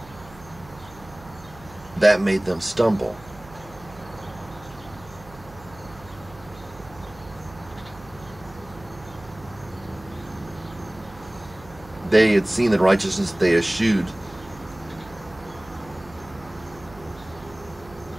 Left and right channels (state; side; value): noise; right; hum, 20 dB below the sound